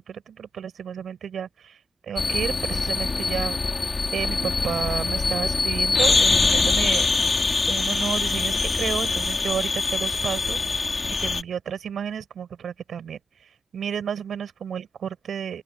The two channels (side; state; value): both; normal; correlation 0.89